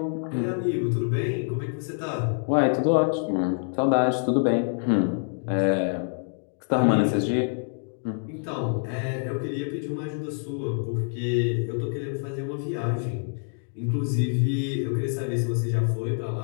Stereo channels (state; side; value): silent; right; digital silence